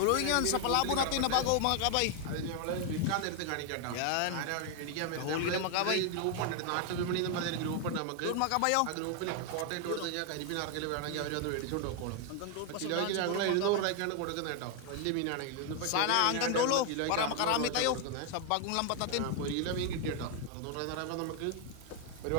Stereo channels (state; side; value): different; both; correlation 0.01